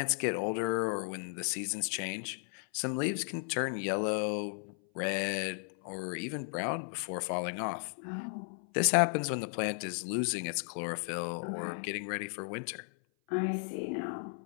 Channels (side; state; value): right; silent; 55 dB below the other